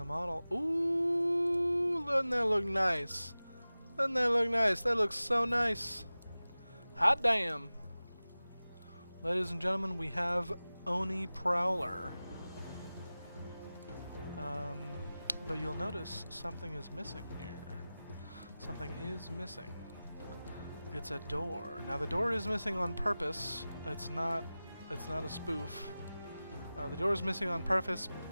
model. Ooh, doesn't that look nice? Doesn't that look nice? That looks so nice. Hot damn. Ladies and gentlemen, we have Oni Prowler. But you'll notice something is missing here. Something is missing. It's a door. Now the door is missing on purpose. It's not a spoof. The door is missing on purpose.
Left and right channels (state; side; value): inverted; both; correlation -0.97